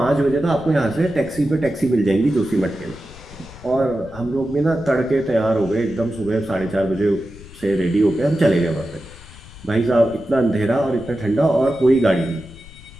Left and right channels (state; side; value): noise; left; rumble, 19 dB below the sound